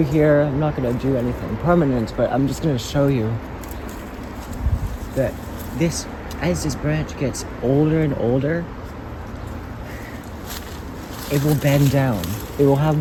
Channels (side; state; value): both; identical; correlation 1.00